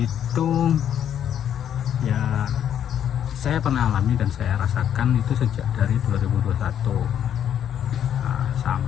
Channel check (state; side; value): quieter; right; 9.6 dB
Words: ya saya pernah alami dan saya rasakan itu sejak dari 2021